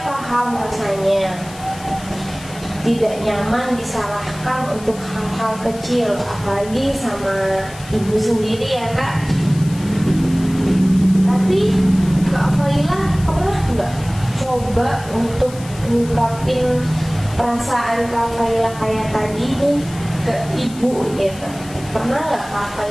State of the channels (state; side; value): noise; left; hiss, 18 dB below the sound